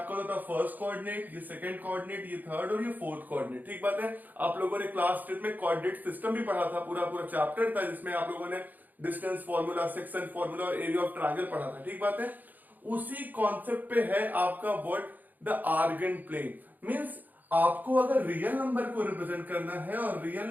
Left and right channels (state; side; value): late; left; 0.084 ms